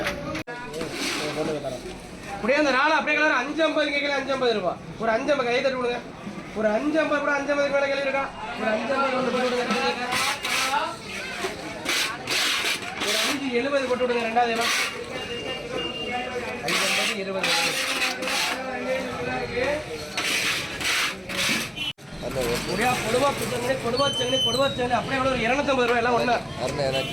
அப்படியே அந்த நாலு அப்படியே கலர் 550 கேட்கல 550 ரூபா. ஒரு 550 கை தட்டு விடுங்க. ஒரு 550 கூட 550 கூட கேள்வி இருக்கா? ஒரு 550 போட்டு விடுங்க. ஒரு 570 போட்டு விடுங்க. ரெண்டாவது எல்லாம் 550 20 அப்படியே ஒரு 250 ரூபாய் எல்லாம் ஒண்ணு.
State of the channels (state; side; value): identical; both; correlation 1.00